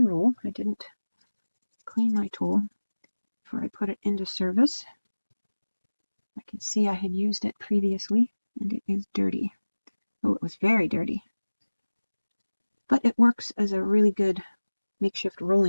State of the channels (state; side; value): inverted; both; correlation -1.00